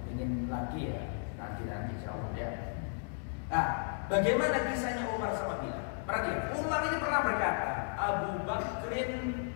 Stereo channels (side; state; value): right; silent; digital silence